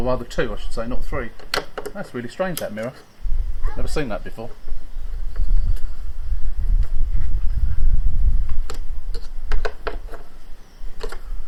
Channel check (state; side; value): identical; both; correlation 1.00